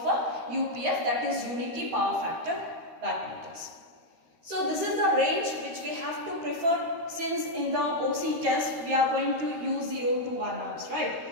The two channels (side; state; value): left; late; 13 ms